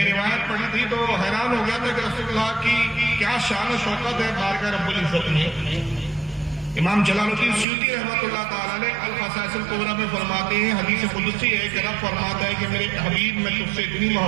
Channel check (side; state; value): left; drops out; at 7.7 s